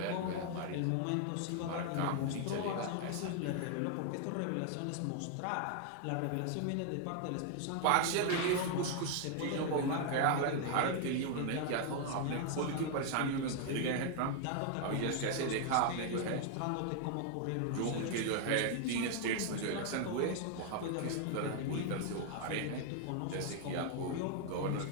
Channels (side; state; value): both; different; correlation 0.00